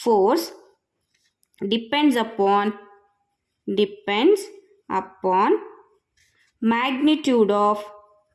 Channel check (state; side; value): identical; both; correlation 1.00